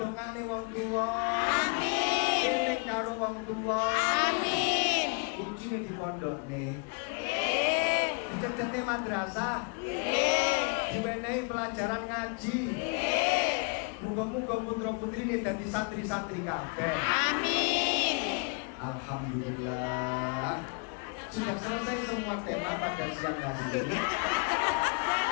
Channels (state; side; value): quieter; right; 37.7 dB